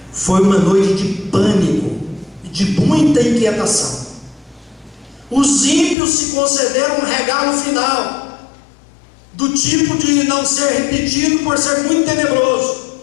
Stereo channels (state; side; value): drops out; right; at 6.0 s